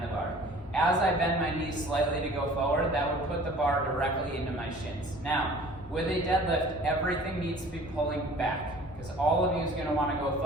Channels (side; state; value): both; normal; correlation 0.48